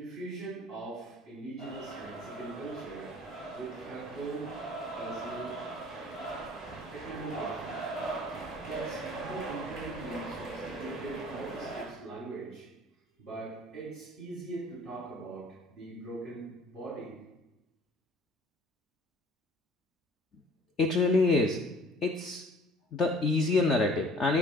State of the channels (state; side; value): normal; both; correlation 0.52